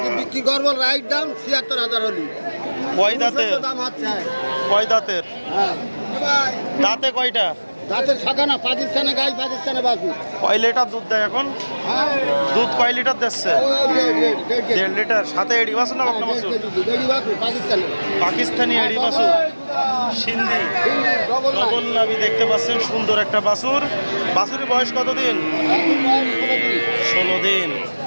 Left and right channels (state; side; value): inverted; both; correlation -1.00